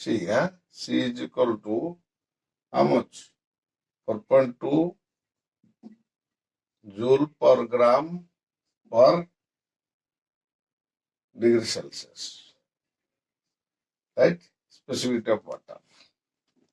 is equal to how much? 4.2 joule per gram per degree Celsius. Right? Specific heat of water.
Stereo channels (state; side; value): identical; both; correlation 1.00